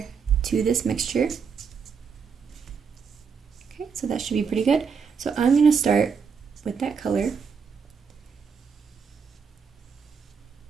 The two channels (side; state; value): left; quieter; 6.1 dB